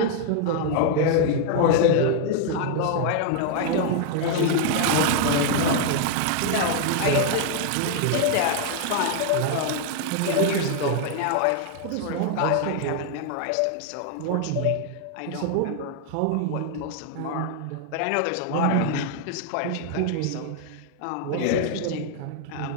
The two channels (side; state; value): both; different; correlation 0.00